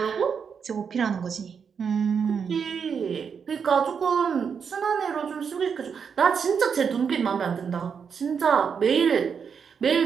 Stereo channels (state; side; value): quieter; left; 6.6 dB